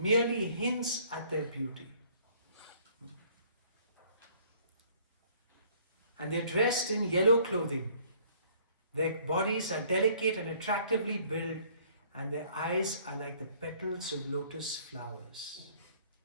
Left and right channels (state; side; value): inverted; both; correlation -0.58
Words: hints at their beauty. And they're dressed in yellow clothing. Their bodies are delicate and attractively built, and their eyes are like the petals of lotus flowers.